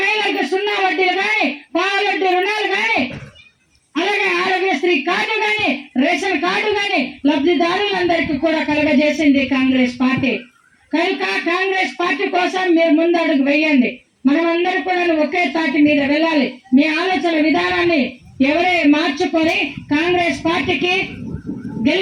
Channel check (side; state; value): both; identical; correlation 1.00